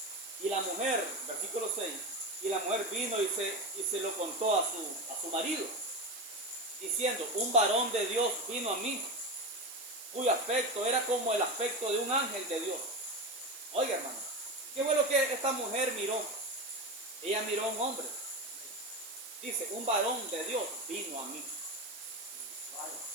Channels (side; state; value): right; noise; hiss, 13 dB below the sound